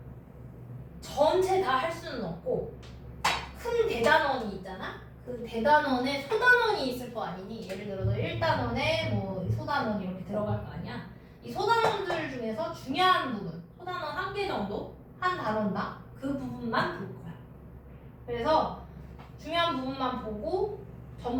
전체 다 할 수는 없고 큰 대단원이 있잖아. 그 대단원에 소단원이 있을 거 아니니. 예를 들어서 1단원에 뭐 소단원 이렇게 들어갈 거 아니야. 이 소단원들 중에서 중요한 부분, 소단원 1개 정도 한 단원당 그 부분만 볼 거야. 그래서 중요한 부분만 보고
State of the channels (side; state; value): both; identical; correlation 1.00